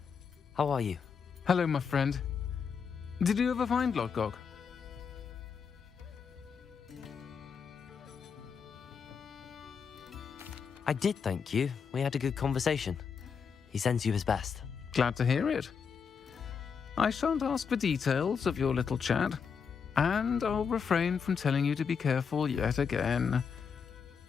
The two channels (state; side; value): quieter; right; 6.3 dB